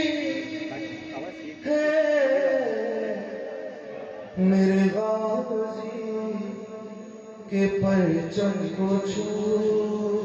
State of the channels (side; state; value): both; identical; correlation 1.00